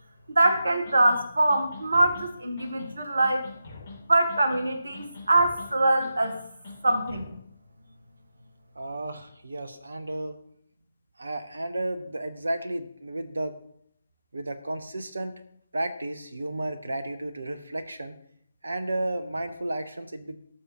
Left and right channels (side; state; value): both; inverted; correlation -0.90